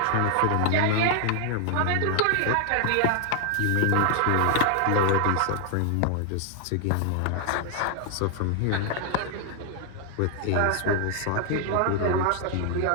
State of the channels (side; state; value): both; different; correlation 0.00